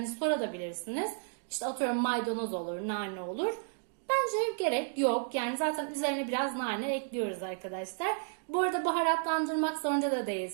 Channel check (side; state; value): left; silent; digital silence